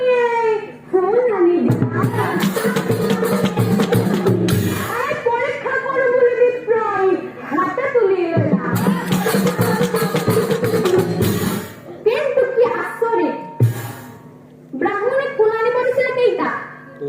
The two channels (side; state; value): both; identical; correlation 1.00